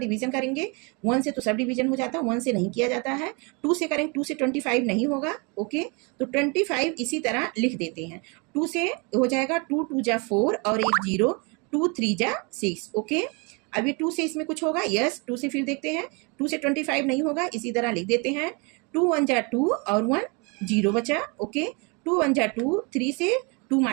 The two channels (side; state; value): left; quieter; 31.3 dB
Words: करेंगे। 1 से तो सब डिवीजन हो जाता है, 1 से नहीं किया जाता है। 2 से करेंगे, 2 से 25 नहीं होगा। ओके, तो 25 इसी तरह लिख देते हैं। 2 से हो जाएगा 2 2 जा 4 और एक 0, 2 3 जा 6। ओके, अभी 2 से इसमें कुछ होगा? यस, 2 से फिर देखते हैं। 2 से 25 नहीं होगा, इसी तरह लिख देते हैं। 2 1 जा 2 और 1 0 बचा। ओके, 2 1 जा 2, 3 से 2